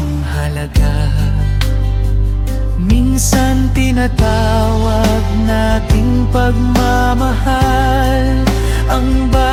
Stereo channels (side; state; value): both; identical; correlation 1.00